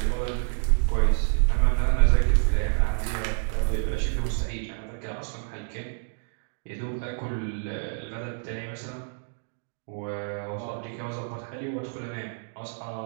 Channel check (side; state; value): left; silent; digital silence